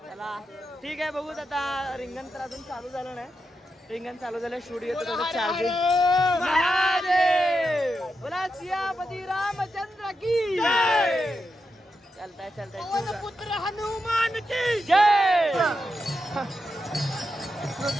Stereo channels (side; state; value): both; normal; correlation 0.87